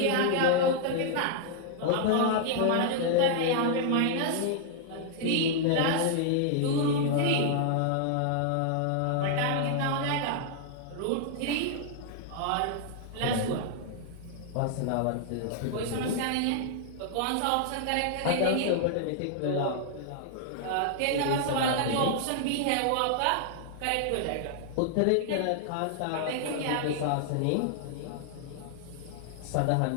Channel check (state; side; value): different; both; correlation -0.01